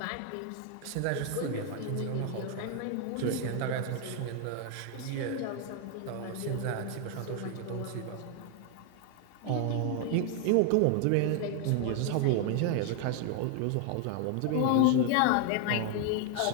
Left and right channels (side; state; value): both; different; correlation 0.01